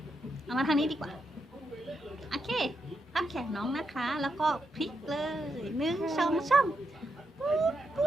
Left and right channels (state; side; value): normal; both; correlation 0.83